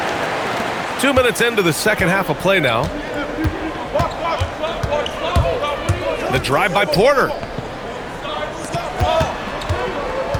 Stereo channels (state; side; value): identical; both; correlation 1.00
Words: Two minutes into the second half of play now. The drive by Porter.